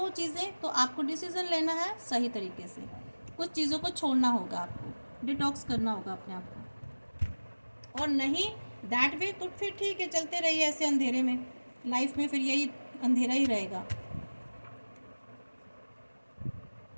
चीज़ें, तो आपको डिसीज़न लेना है सही तरीके से, कुछ चीज़ों को छोड़ना होगा, आपको डिटॉक्स करना होगा अपने आप को। और नहीं दैट वे, तो फिर ठीक है, चलते रहिए ऐसे अंधेरे में, लाइफ में फिर यही अंधेरा ही रहेगा।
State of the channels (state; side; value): inverted; both; correlation -1.00